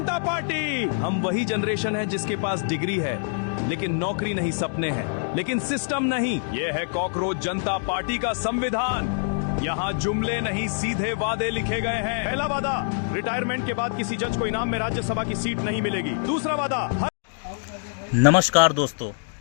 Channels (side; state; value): right; silent; digital silence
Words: पार्टी। हम वही जनरेशन है जिसके पास डिग्री है लेकिन नौकरी नहीं, सपने हैं लेकिन सिस्टम नहीं। ये है कॉकरोच जनता पार्टी का संविधान। यहाँ जुमले नहीं सीधे वादे लिखे गए हैं। पहला वादा, रिटायरमेंट के बाद किसी जज को इनाम में राज्यसभा की सीट नहीं मिलेगी। दूसरा वादा, नमस्कार दोस्तों,